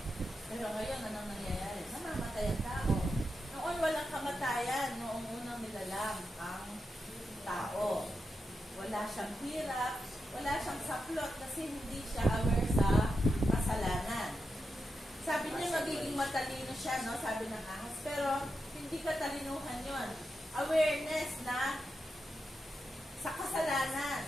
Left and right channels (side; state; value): both; normal; correlation 0.87